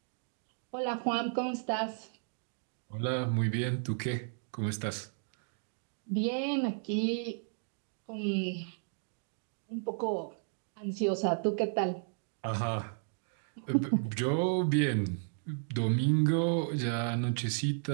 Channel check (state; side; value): silent; left; digital silence